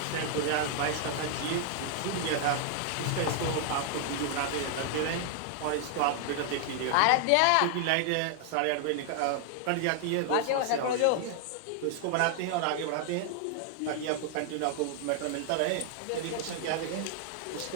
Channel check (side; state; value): both; different; correlation 0.00